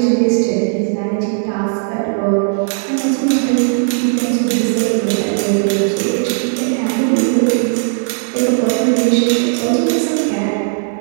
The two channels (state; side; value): silent; left; digital silence